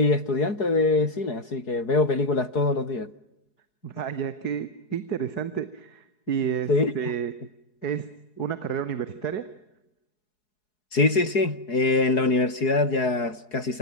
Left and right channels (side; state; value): right; late; 4.7 ms